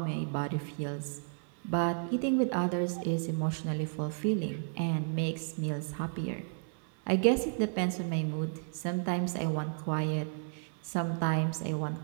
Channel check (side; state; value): left; silent; 56 dB below the other